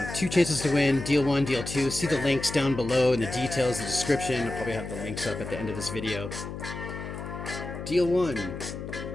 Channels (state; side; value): noise; left; hum, 8 dB below the sound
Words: 2 chances to win, deal 1, deal 2. See the links down below in the details, the description. I'll probably have the links up at the end of this video. Deal 1,